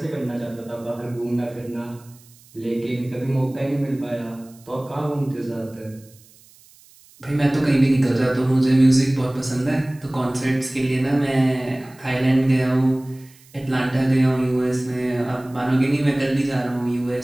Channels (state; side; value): noise; right; hiss, 27 dB below the sound